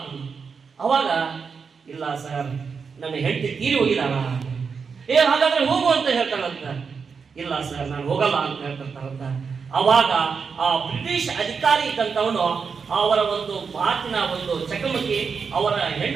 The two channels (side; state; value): left; quieter; 5.7 dB